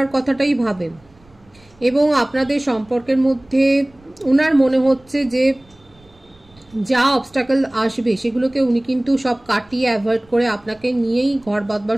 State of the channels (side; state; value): right; noise; rumble, 30 dB below the sound